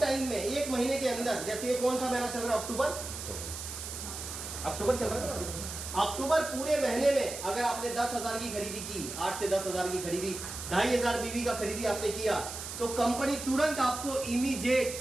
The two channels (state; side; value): noise; right; hiss, 8 dB below the sound